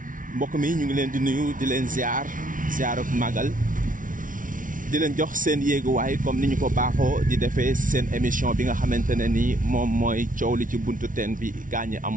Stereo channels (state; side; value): late; left; 0.38 ms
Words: Mbokk mi ñu ngi leen di nuyu di leen ziar ak magal di leen jox seen yéeguwaay comme ni ñu ko baaxoo di defee seen émission bi nga xamante ne ni moom mooy coow li ci buntu teen bi gaañi